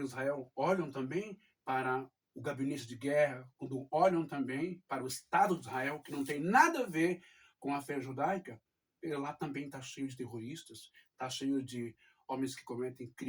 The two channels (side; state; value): both; identical; correlation 1.00